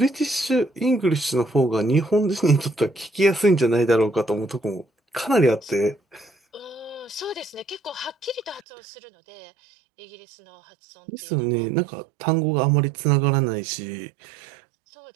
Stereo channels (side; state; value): left; drops out; at 8.6 s